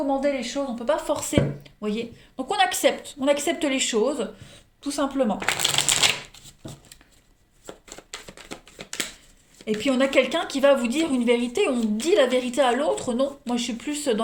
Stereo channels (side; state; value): both; identical; correlation 1.00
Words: les choses, on peut pas forcer. Voyez. Donc on accepte les choses, tout simplement. Et puis on a quelqu'un qui va vous dire une vérité, on dit la vérité à l'autre. Non, moi je suis plus dans